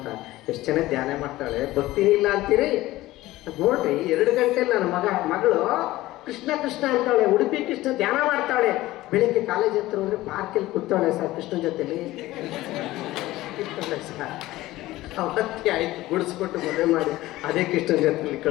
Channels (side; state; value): right; quieter; 17.1 dB